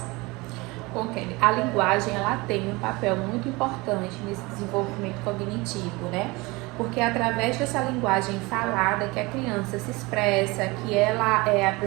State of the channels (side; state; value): left; quieter; 23.8 dB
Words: Bom, Kelly, a linguagem ela tem um papel muito importante nesse desenvolvimento cognitivo, porque é através dessa linguagem falada que a criança se expressa, que ela